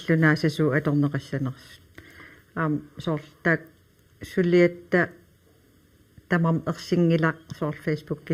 аторнеқассанерсут аам соорлтаак сулиатта тамам ерсингилақ соор фейсбук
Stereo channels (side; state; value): both; identical; correlation 1.00